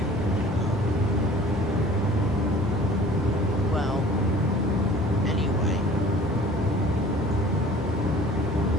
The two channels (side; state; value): both; normal; correlation 0.48